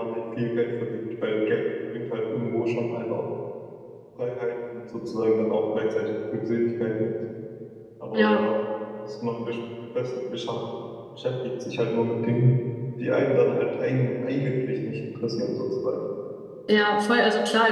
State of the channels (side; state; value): both; identical; correlation 1.00